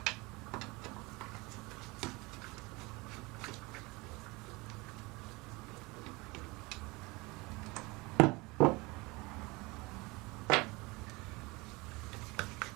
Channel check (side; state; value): left; quieter; 24.3 dB